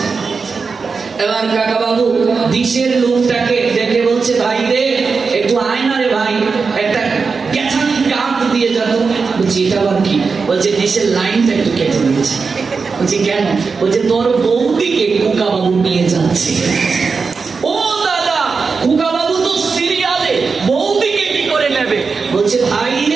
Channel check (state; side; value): quieter; left; 4.9 dB